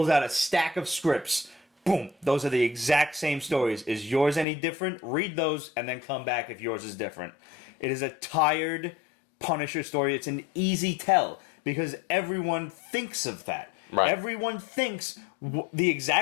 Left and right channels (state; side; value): drops out; right; at 4.5 s